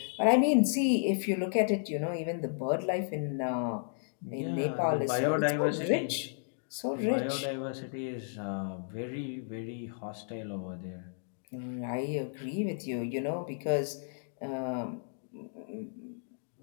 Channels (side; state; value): right; silent; digital silence